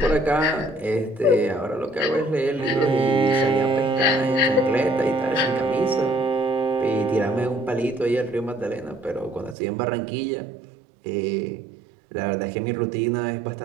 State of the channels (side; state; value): left; drops out; at 9.6 s